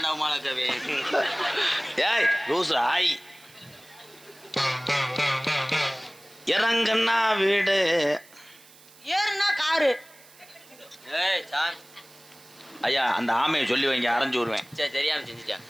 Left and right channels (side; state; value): right; noise; hiss, 24 dB below the sound